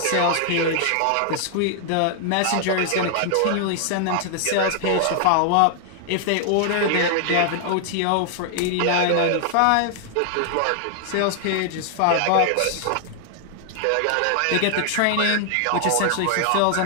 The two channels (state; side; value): different; both; correlation 0.00